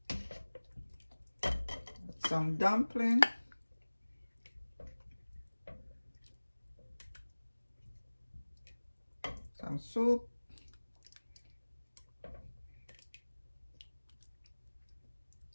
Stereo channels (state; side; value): inverted; both; correlation -1.00